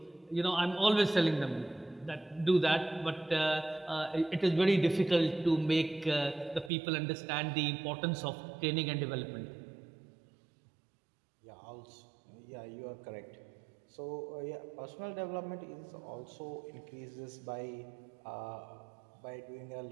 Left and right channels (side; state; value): left; drops out; at 6.7 s